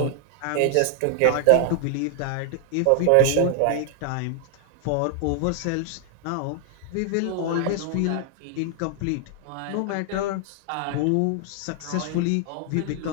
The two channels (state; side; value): different; both; correlation 0.00